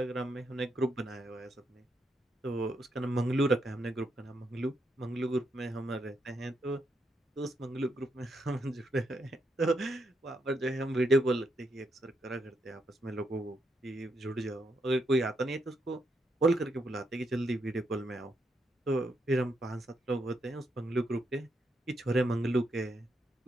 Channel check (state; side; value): normal; both; correlation 0.79